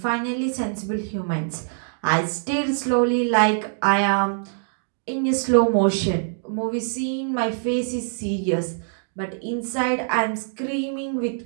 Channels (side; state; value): left; silent; digital silence